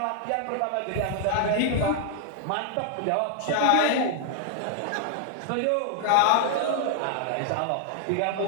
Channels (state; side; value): different; both; correlation 0.00